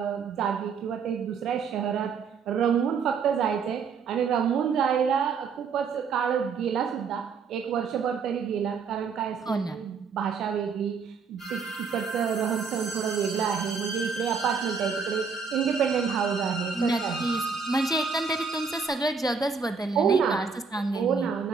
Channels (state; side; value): quieter; left; 5.6 dB